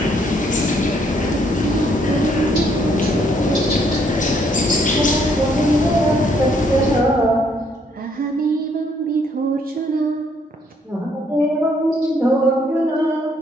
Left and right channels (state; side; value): normal; both; correlation 0.68